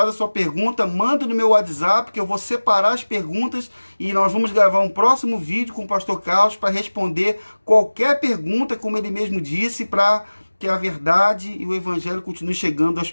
a sua pergunta, manda no meu WhatsApp, que eu vou separar as perguntas e nós vamos gravar um próximo vídeo com o pastor Carlos para responder qualquer pergunta, como ele mesmo disse, para que a verdade e o evangelho continuem chegando às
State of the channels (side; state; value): both; inverted; correlation -1.00